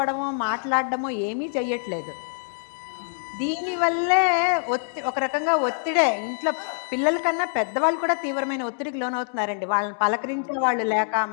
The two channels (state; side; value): silent; right; digital silence